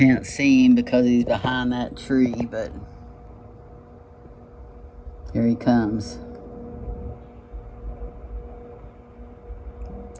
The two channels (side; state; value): both; identical; correlation 1.00